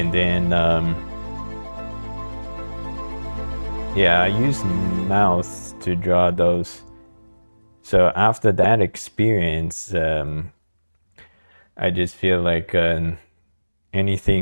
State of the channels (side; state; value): both; inverted; correlation -1.00